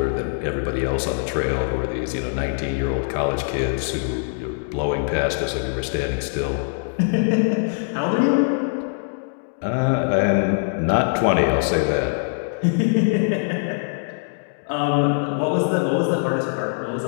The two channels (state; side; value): silent; right; 64 dB below the other